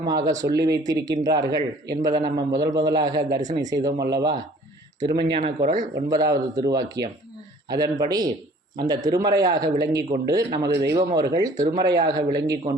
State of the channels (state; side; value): normal; both; correlation 0.52